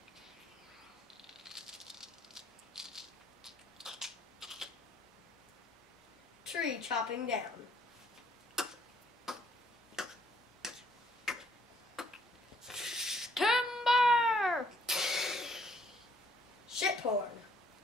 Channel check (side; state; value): both; normal; correlation 0.65